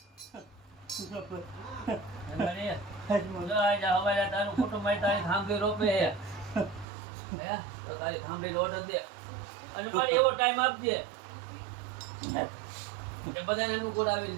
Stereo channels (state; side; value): drops out; left; at 6.9 s